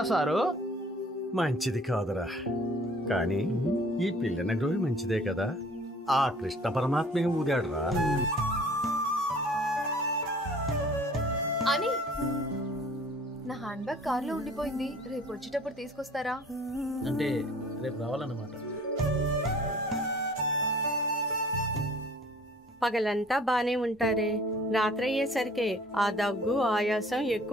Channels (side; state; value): both; normal; correlation 0.51